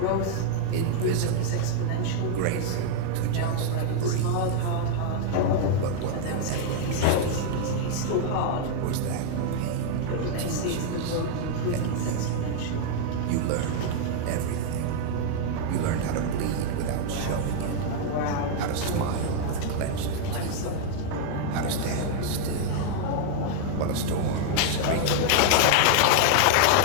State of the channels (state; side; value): different; both; correlation 0.00